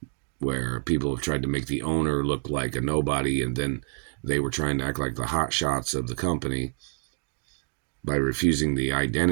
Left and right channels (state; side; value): silent; left; digital silence